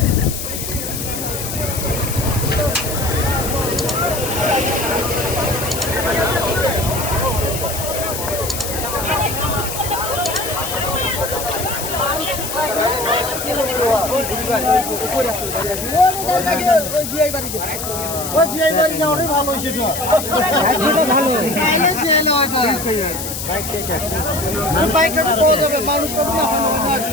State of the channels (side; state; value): left; noise; hiss, 6 dB below the sound